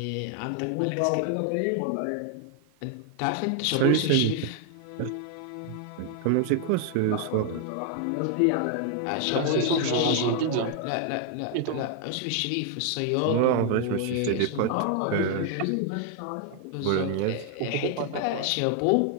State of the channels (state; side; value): different; both; correlation 0.00